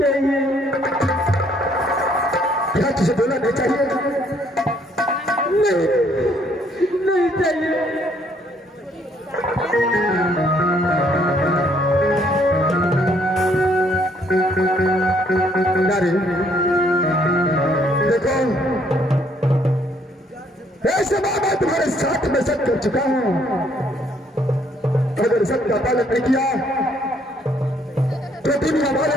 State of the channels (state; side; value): normal; both; correlation 0.66